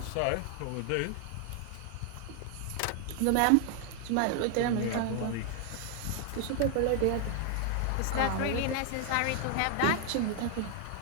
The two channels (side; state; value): both; different; correlation 0.00